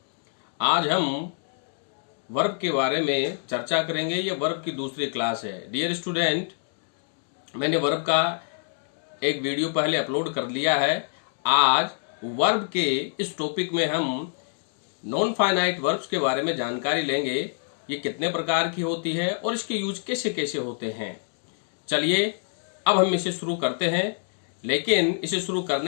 आज हम verb के बारे में चर्चा करेंगे। ये वर्ब की दूसरी क्लास है। डियर स्टूडेंट, मैंने वर्ब का एक वीडियो पहले अपलोड कर लिया है। आज वर्ब के इस टॉपिक में हम नॉन फाइनाइट वर्ब्स के बारे में जानकारी लेंगे। ये कितने प्रकार की होती है और इसके यूज कैसे कैसे होते हैं। चलिए अब हम इसे शुरू करते हैं, लेकिन इसे शुरू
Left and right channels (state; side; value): silent; right; digital silence